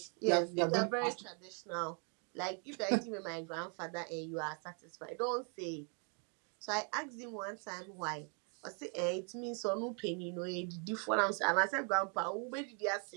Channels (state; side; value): quieter; left; 39.0 dB